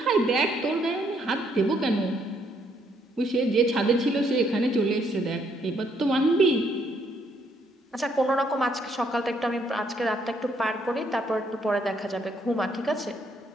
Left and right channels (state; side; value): normal; both; correlation 0.71